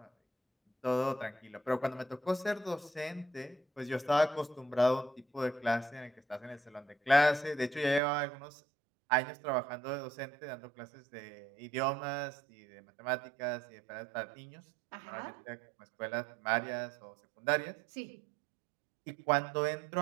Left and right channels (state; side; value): drops out; left; at 8.0 s